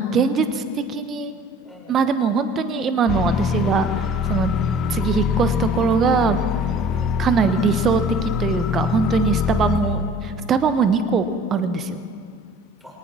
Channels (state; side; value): normal; both; correlation 0.49